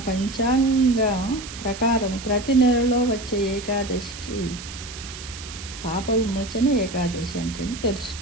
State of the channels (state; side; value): noise; right; hiss, 12 dB below the sound